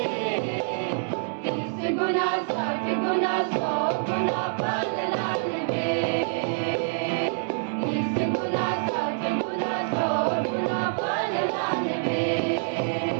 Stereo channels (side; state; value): left; silent; digital silence